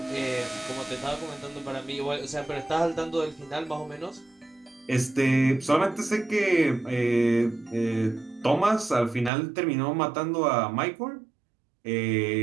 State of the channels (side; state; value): left; drops out; at 9.3 s